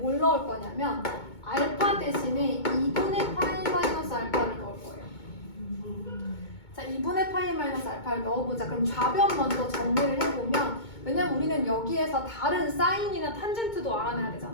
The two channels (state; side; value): late; right; 2.2 ms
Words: 넣을 거냐면 알파 대신에 2분의 파이 마이너스 알파를 넣을 거예요. 자, 2분의 파이 마이너스 알파를 넣어보자. 그럼 좌변 먼저 정리를 해보면 왜냐면 우리는 여기에서 다른 사인이나 탄젠트도 알아내야